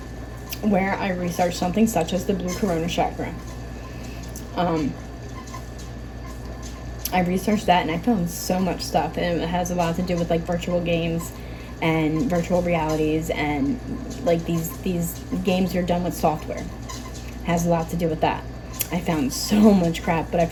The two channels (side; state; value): both; identical; correlation 1.00